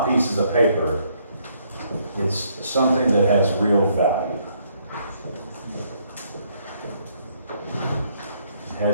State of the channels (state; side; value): inverted; both; correlation -0.69